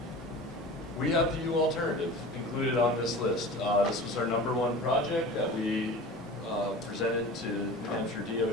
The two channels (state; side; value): normal; both; correlation 0.37